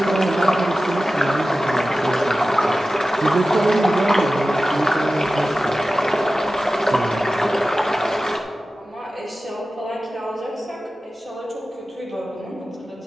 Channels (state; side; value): normal; both; correlation 0.95